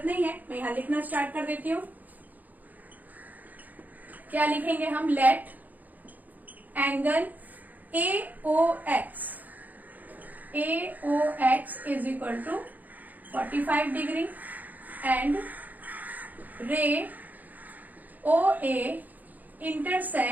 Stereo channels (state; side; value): late; left; 0.082 ms